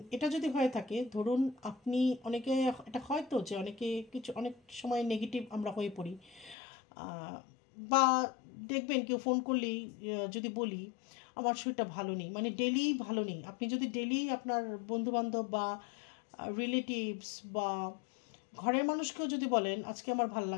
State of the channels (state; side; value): drops out; right; at 6.6 s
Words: এটা যদি হয়ে থাকে, ধরুন আপনি, অনেকে এটা হয়তো যে অনেকে কিছু অনেক সময় নেগেটিভ আমরা হয়ে পড়ি, আহ, বা দেখবেন কেউ ফোন করলেই যদি বলি আমার শরীরটা ভালো নেই, মানে ডেলি ভালো নেই, আপনি যদি ডেলি আপনার বন্ধুবান্ধব বা রিলেটিভস বা ঘরের মানুষকেও যদি বলেন আজকে আমার ভাল